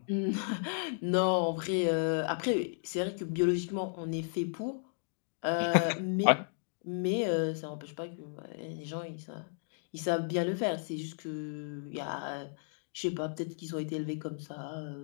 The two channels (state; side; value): silent; right; digital silence